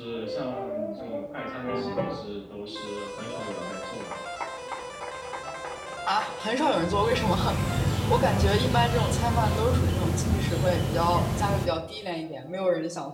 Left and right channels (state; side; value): identical; both; correlation 1.00